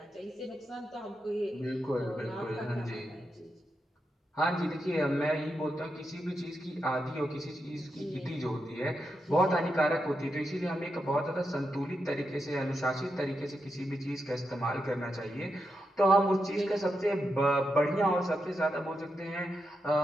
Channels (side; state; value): both; normal; correlation 0.86